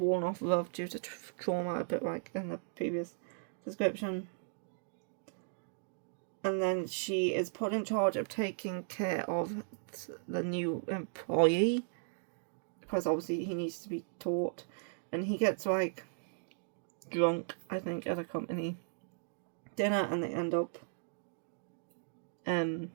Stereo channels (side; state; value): left; silent; digital silence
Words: off love due to trauma, a bit like in the previous description. And then she is put in charge of taking care of the new employee, because obviously he needs to be taught, and he gets like drunk, I think, at a company dinner, and they end up